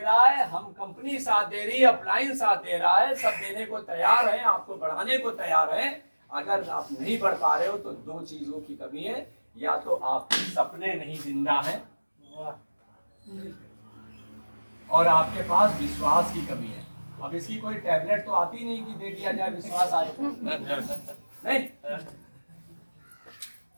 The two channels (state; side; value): inverted; both; correlation -1.00